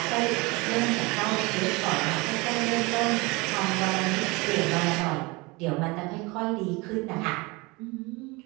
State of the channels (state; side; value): quieter; left; 25.1 dB